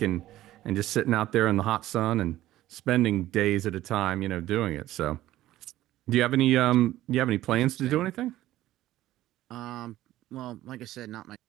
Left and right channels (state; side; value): quieter; left; 14.8 dB